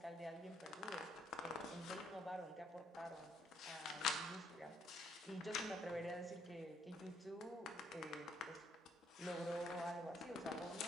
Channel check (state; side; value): normal; both; correlation 0.69